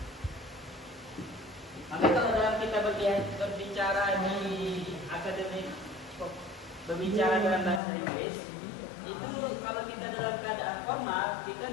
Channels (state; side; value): drops out; right; at 7.8 s